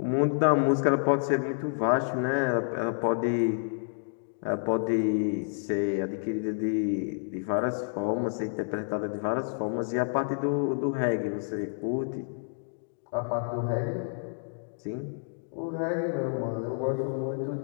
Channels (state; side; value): silent; right; digital silence